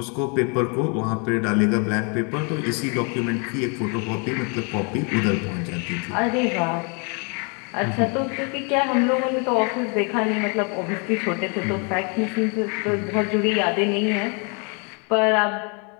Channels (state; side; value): quieter; right; 35.4 dB